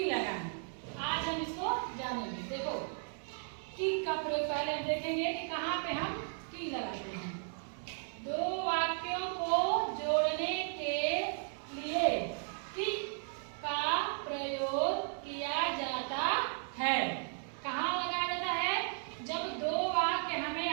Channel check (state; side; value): silent; left; 54 dB below the other